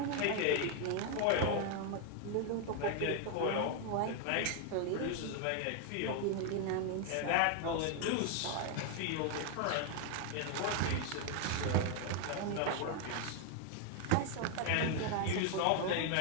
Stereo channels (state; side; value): different; both; correlation 0.00